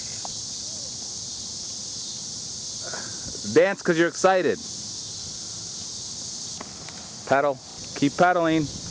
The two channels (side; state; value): both; identical; correlation 1.00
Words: Dance because you're excited. Pedal. Keep pedaling.